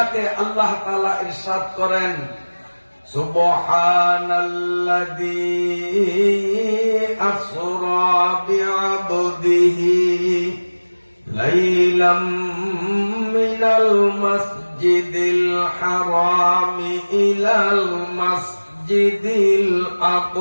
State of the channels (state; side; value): inverted; both; correlation -1.00